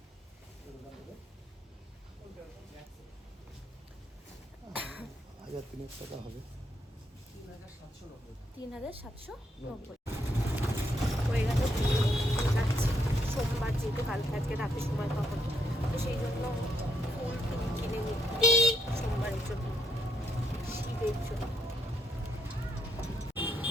1300 টাকা হবে। 3790 হয়ে গেল। যাচ্ছি সোমবার, যেহেতু কালকে আজকে রাতে সময় পাবো, তো সেই জন্য ফুল টুল কিনে নিই সোমবারের জন্য, শিবের জন্য।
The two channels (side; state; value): both; normal; correlation 0.75